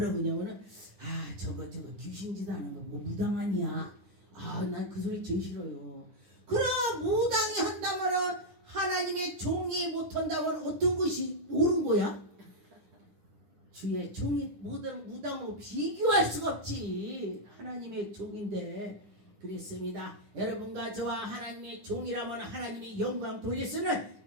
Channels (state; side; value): late; left; 9.8 ms